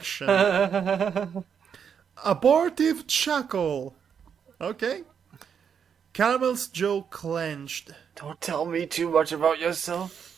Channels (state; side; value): quieter; left; 7.3 dB